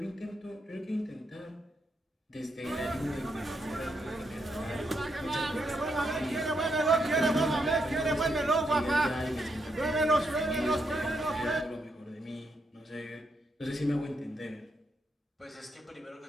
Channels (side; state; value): both; normal; correlation 0.80